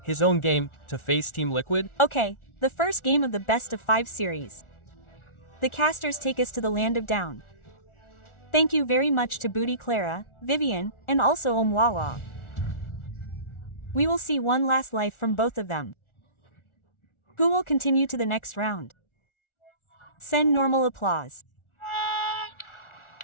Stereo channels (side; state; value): right; late; 1.4 ms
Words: his own game, to face Team Liquid? Okay, the first game of the best of 5 series. The casters take us to the land of down. Thank you very much to Booty Clara, Vivian, and also Omwawa. We will see one last life from both of them. Who will continue to the next round? Send normal applause.